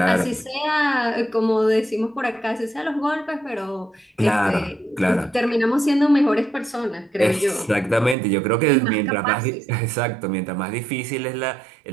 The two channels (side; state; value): left; drops out; at 8.2 s